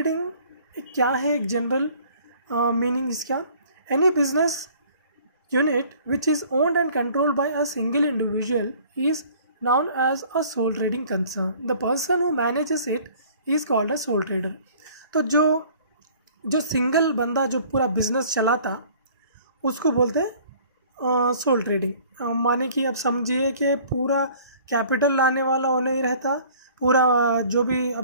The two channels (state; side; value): inverted; both; correlation -0.53